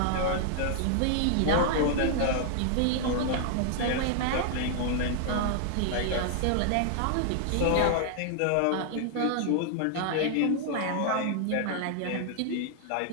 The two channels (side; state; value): both; different; correlation 0.00